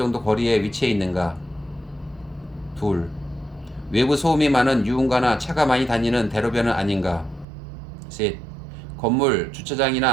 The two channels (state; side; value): drops out; left; at 7.5 s